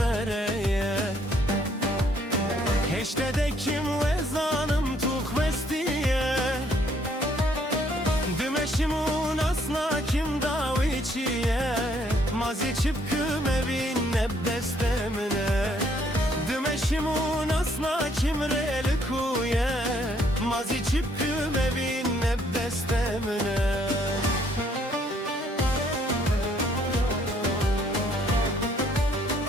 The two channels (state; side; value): normal; both; correlation 0.66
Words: هشته دکیم و زانم تو خوستیه دمشمون asla kim daviçiye Mazi çıpkım evin nebdestemine Dmeşimun asla kim relikuye Mazi çıpkım evin nebdestemine